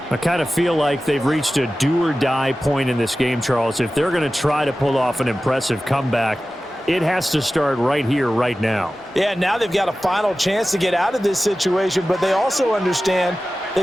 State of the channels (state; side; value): normal; both; correlation 0.95